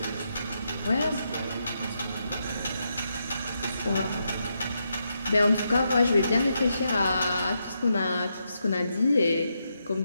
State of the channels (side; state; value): both; inverted; correlation -0.82